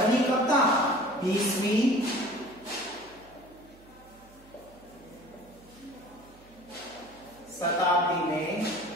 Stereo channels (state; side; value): noise; right; hum, 25 dB below the sound